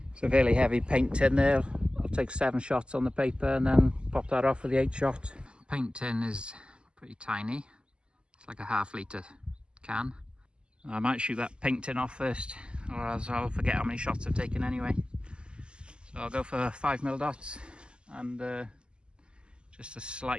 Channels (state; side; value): late; left; 0.050 ms